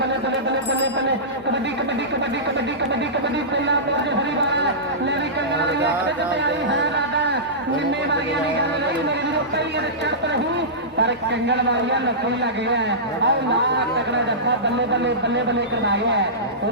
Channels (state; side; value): normal; both; correlation -0.18